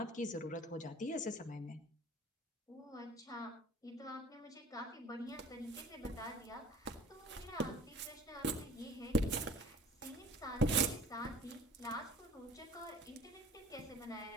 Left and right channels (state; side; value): normal; both; correlation 0.47